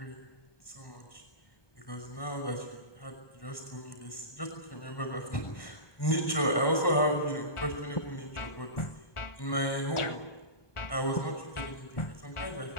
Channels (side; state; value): right; late; 1.1 ms